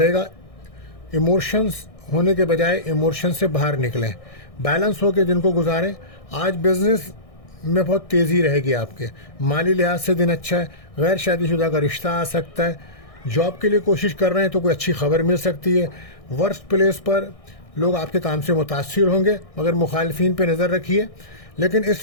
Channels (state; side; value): late; right; 1.6 ms